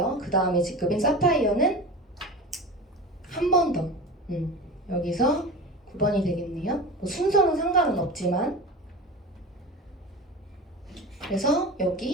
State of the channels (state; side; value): normal; both; correlation 0.30